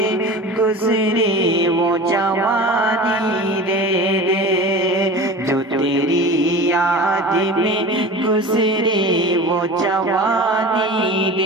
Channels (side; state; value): both; normal; correlation 0.34